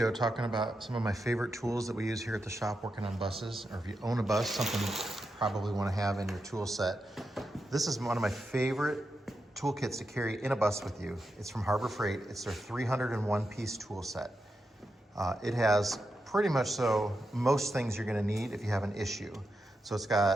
talking about some of my favorite tools that we use here at the shop working on buses, or if you own a bus, something you probably wanna have in your tool set. This is one of my favorite toolkits to carry in a bus with you. It's from Harbor Freight. It's their 301 piece tool set. It has pretty much most things you're gonna need if you have an issue. So it's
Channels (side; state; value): both; normal; correlation 0.87